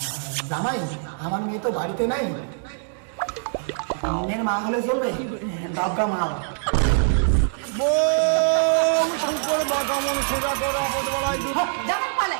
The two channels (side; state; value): left; silent; 60 dB below the other